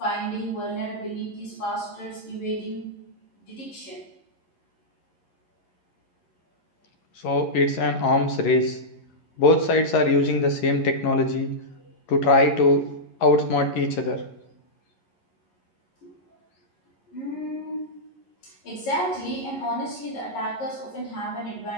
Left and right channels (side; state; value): right; late; 11 ms